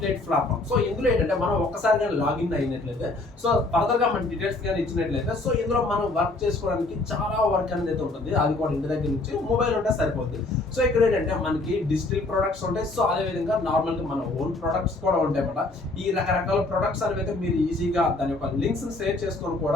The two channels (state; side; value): quieter; right; 3.1 dB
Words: platform. So ఇందులో ఏంటంటే మనం ఒక్కసారిగా లాగిన్ అయినట్లయితే, సో ఫర్దర్ గా మన డీటెయిల్స్ కానీ ఇచ్చినట్లయితే, సో ఇందులో మనం వర్క్ చేసుకోవడానికి చాలా వర్క్ అనేది అయితే ఉంటుంది. అది కూడా ఇంటి దగ్గర నుంచి మొబైల్ ఉంటే సరిపోతుంది. సో ఇక్కడ ఏంటంటే మనకి డిజిటల్ ప్రొడక్ట్స్ ఉంటాయి. సో అదే విధంగా నార్మల్ గా మన ఓన్ ప్రొడక్ట్స్ కూడా ఉంటాయి అన్నమాట. ఈ రకరకాల ప్రొడక్ట్స్ అనేవి అయితే మీరు ఈజీగా దాని యొక్క లింక్స్ షేర్ చేసుకొని